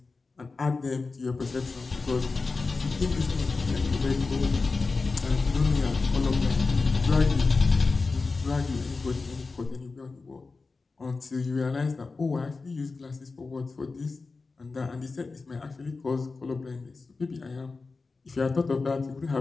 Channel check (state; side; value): quieter; right; 4.0 dB